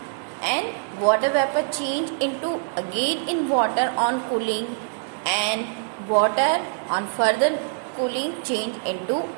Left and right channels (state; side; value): silent; left; 62 dB below the other